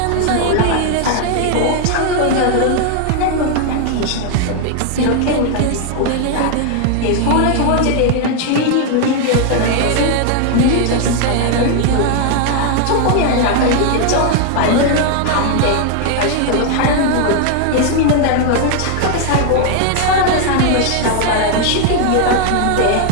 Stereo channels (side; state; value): both; different; correlation 0.00